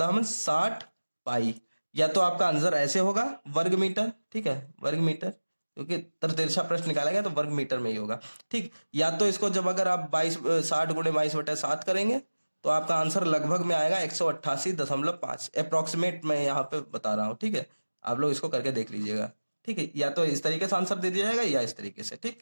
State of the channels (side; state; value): both; inverted; correlation -1.00